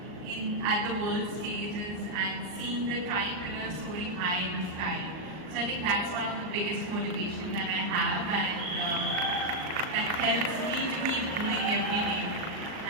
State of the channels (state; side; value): late; left; 38 ms